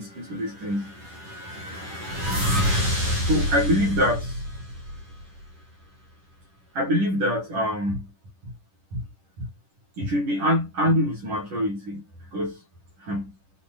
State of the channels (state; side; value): late; left; 10 ms